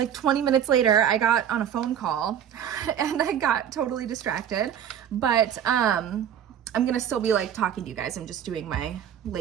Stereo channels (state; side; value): quieter; left; 9.3 dB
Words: 20 minutes later, I got on a phone call and I got totally distracted, but I'm gonna still be like talking to you guys. I'm just doing my